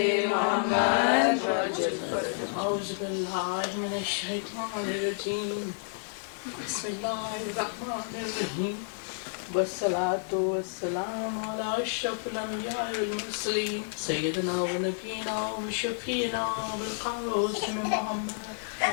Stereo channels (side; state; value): right; silent; digital silence